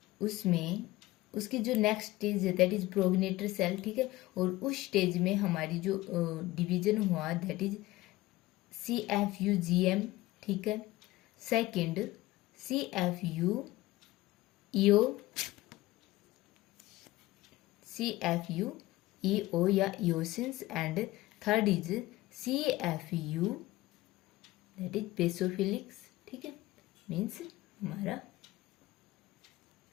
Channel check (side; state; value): right; quieter; 18.3 dB